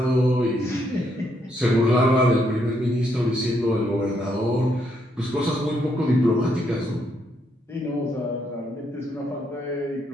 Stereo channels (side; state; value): both; normal; correlation 0.75